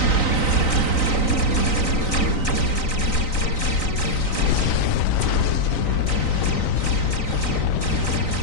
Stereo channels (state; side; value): late; right; 3.9 ms